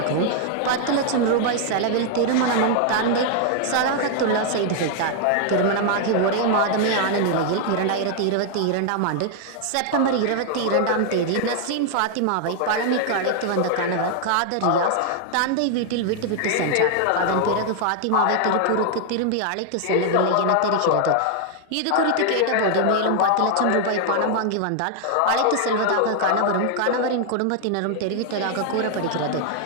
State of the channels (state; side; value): different; both; correlation 0.00